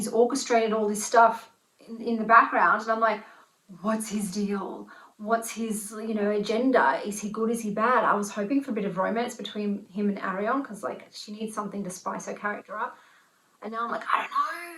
orchestrated all this stuff in the background. And I'm like, what's his deal? What's his, you know, agenda? Is he good? Is he bad? I was hoping for a bit of romance between him and Arion because, like, she needs something to spice her character up. And now I'm like, I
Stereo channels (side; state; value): both; identical; correlation 1.00